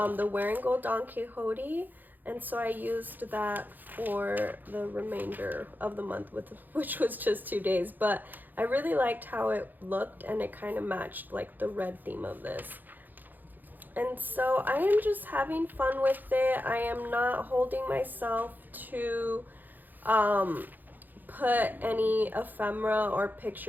Wearing Gold Don Quixote. And so I used that for the remainder of the month, which was just 2 days. But I really liked how it looked, and it kind of matched like the red theme of this. And so I am just having fun with it. I am not holding myself to put any ephemera or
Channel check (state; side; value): late; left; 0.086 ms